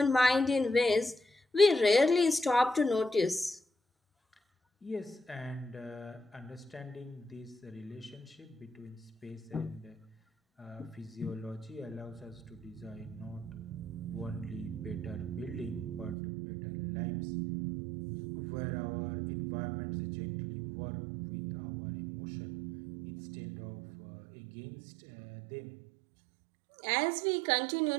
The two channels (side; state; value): left; drops out; at 16.2 s